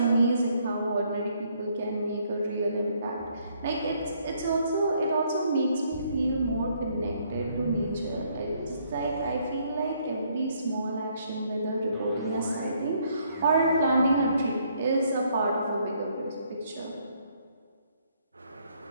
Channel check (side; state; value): both; inverted; correlation -0.68